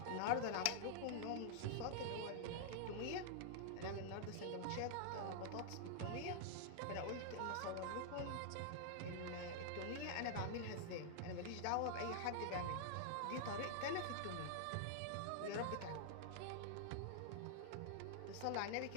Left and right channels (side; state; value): both; different; correlation -0.01